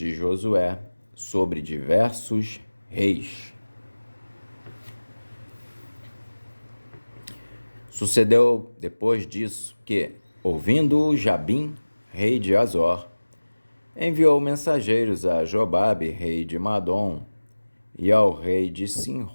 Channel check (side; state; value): both; inverted; correlation -1.00